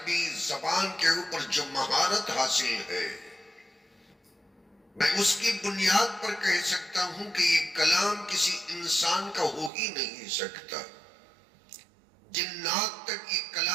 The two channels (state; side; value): drops out; left; at 9.7 s